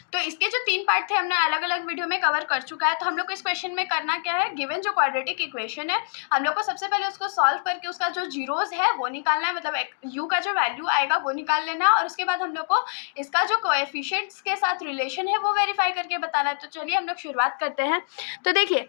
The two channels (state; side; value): silent; right; digital silence